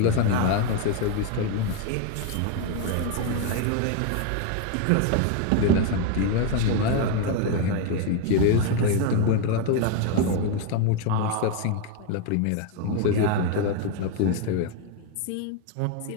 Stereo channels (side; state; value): both; different; correlation 0.01